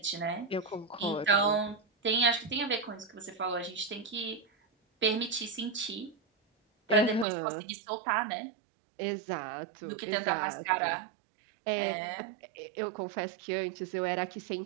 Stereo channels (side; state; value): left; drops out; at 7.2 s